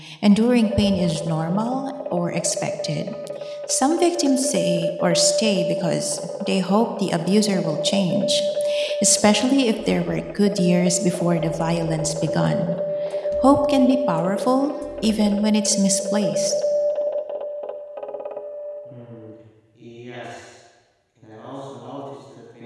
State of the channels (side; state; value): both; identical; correlation 1.00